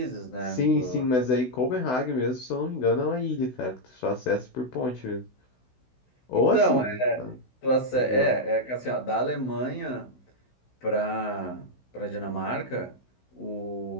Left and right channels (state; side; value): late; right; 16 ms